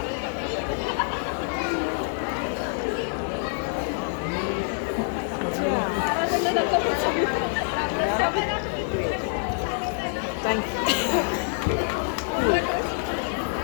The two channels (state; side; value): silent; right; 61 dB below the other